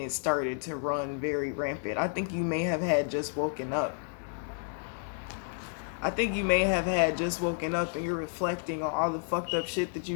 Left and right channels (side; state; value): right; silent; digital silence